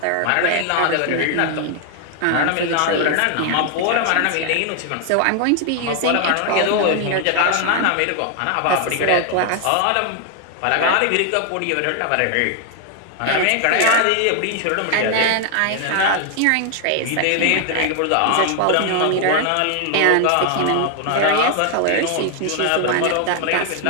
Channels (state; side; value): different; both; correlation 0.00